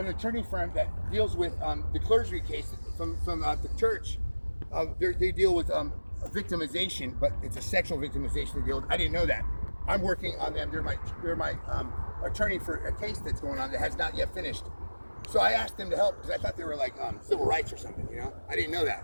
attorney firm that deals with the clergy case from the church. They deal with victimization, but it's a sexual victimization they deal with. I didn't know that. I'm working on them. They're my attorney for a case that's going on that has not yet finished. So I asked them to help because I thought they were like civil rights or something. I didn't know that.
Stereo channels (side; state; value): both; inverted; correlation -1.00